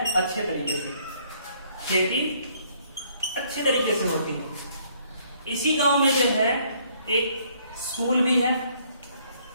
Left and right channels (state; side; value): inverted; both; correlation -0.64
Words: अच्छे तरीके से, खेती अच्छे तरीके से होती है। इसी गांव में जो है एक स्कूल भी है,